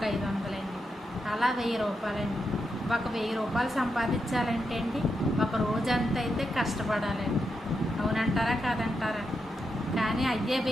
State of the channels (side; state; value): both; normal; correlation 0.85